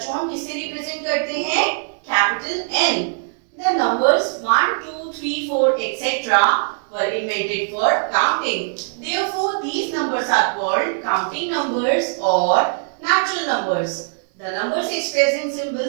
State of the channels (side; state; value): left; silent; 65 dB below the other